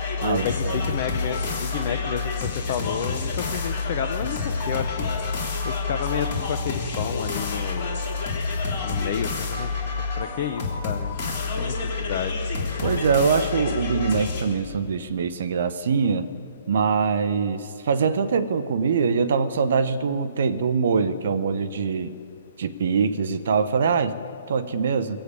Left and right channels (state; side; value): inverted; both; correlation -0.61